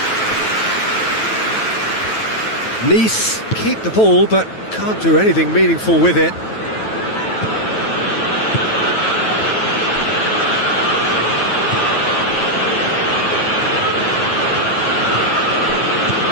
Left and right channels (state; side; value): late; right; 9.2 ms